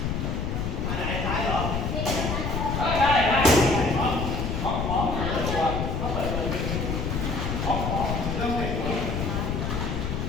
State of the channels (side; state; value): left; noise; rumble, 1 dB below the sound